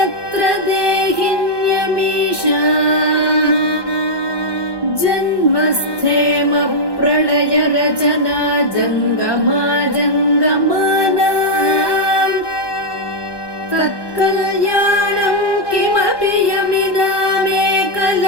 देहिन्यमीशा जन्मस्थेम प्रलय रचना जङ्गमा जङ्गमाना तत्कल्याणं किमपि यमिनामेकलक्ष्यं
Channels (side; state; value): right; late; 1.2 ms